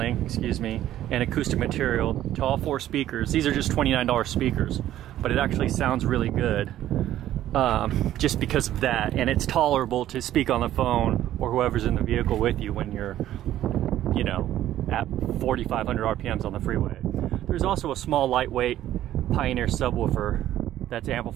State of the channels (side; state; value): left; quieter; 12.8 dB